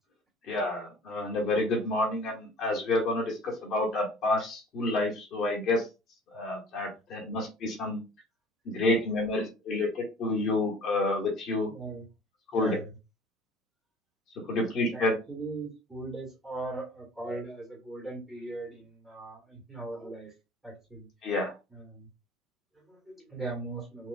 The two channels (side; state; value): both; normal; correlation 0.47